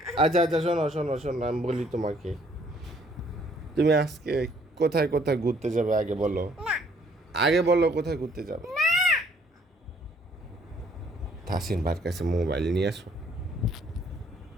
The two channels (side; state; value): both; normal; correlation 0.63